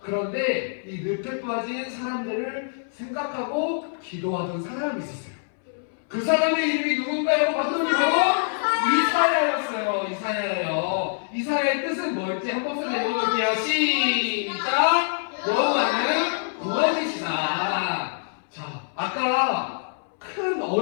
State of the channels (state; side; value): silent; right; 62 dB below the other